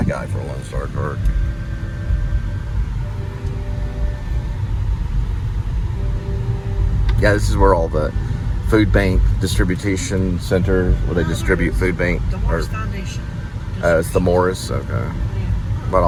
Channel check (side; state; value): both; identical; correlation 1.00